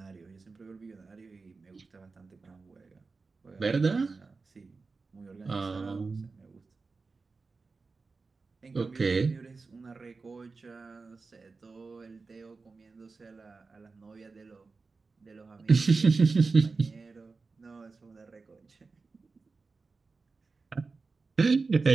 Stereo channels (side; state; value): left; quieter; 4.2 dB